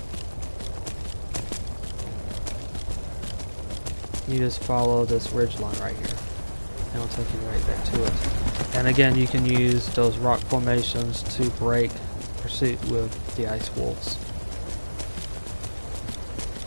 You just follow this ridge line right here, and it'll take you right there to it. And again, you can use those rock formations to break pursuit with the ice wolves,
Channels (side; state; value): both; inverted; correlation -1.00